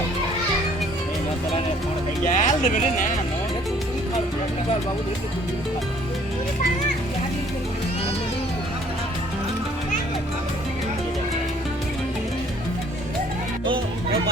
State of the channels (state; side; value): normal; both; correlation 0.59